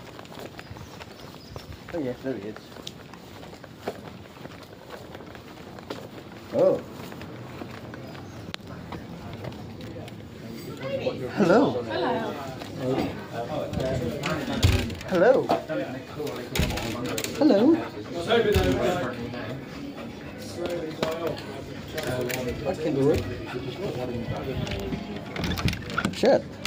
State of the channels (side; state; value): both; identical; correlation 1.00